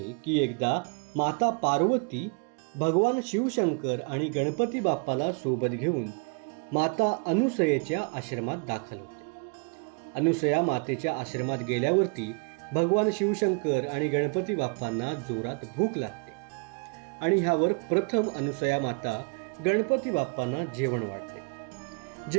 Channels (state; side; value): quieter; left; 36.1 dB